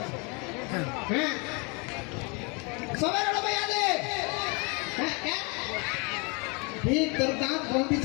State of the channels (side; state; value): right; quieter; 31.2 dB